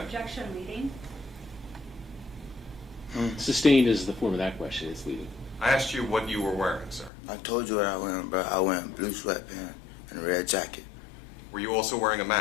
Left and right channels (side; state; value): right; drops out; at 7.1 s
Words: Objection, leading. Sustained is the form of that question. It's leading. I asked you what you were wearing, sir. I told you what I was wearing, bro. I was wearing blue sweatpants and a red jacket. Were you also wearing a